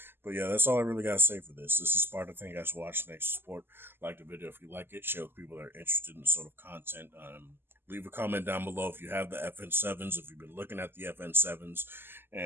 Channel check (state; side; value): late; left; 0.11 ms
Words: But yeah, that's all I really got to say for this. This is Sparta. Thank you guys for watching. Thanks for support. Like the video if you like it. Share with people that are interested in the sort of content. Leave a comment down below if you have the FN7s, if you've been looking at the FN7s.